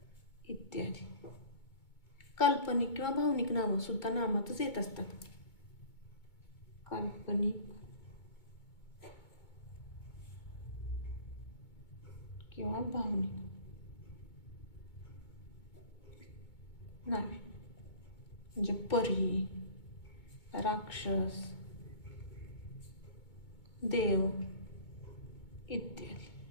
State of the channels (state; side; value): late; right; 2.2 ms